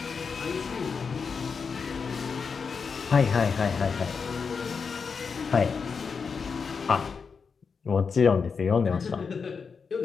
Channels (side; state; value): right; quieter; 5.5 dB